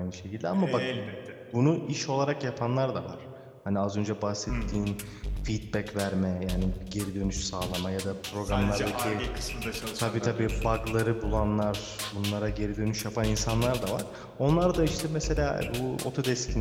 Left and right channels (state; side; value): identical; both; correlation 1.00